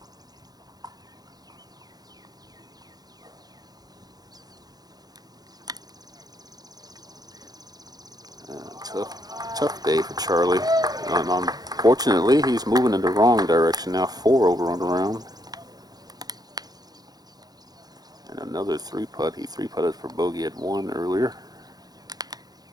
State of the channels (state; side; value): late; left; 0.19 ms